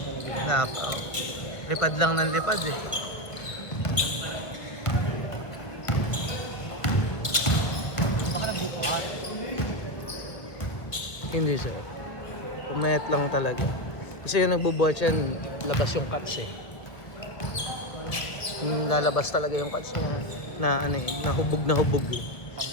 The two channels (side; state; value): right; late; 1.2 ms